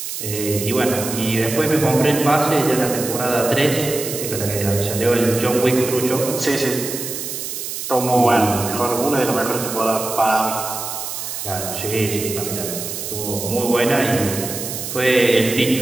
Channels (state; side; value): noise; right; hiss, 6 dB below the sound